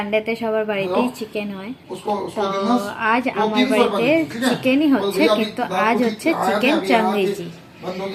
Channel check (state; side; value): identical; both; correlation 1.00